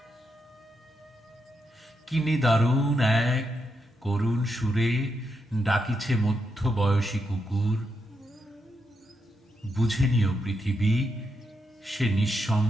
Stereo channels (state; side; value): normal; both; correlation 0.83